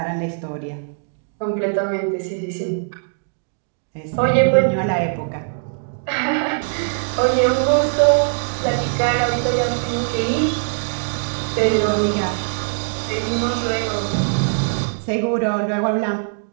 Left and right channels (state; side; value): silent; left; digital silence